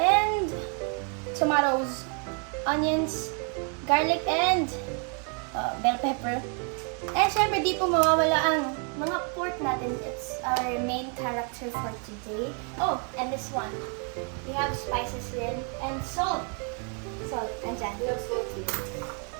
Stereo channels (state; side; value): quieter; left; 39.4 dB